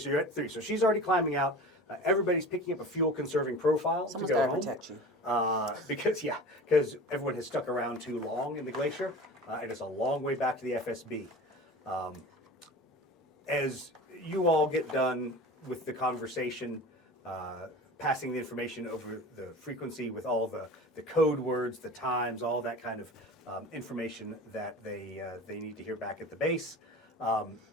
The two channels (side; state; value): both; normal; correlation 0.36